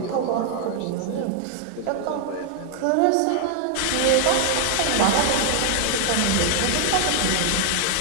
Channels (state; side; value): different; both; correlation 0.00